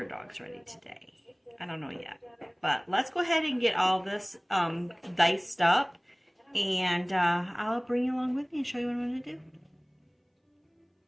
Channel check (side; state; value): both; identical; correlation 1.00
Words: dogs ready today. I don't know yet. But let's go ahead and get all this diced up, and I'll bring you along with me and show you what I'm going to do.